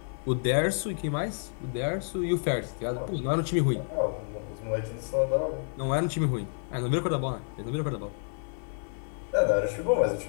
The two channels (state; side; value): silent; right; 58 dB below the other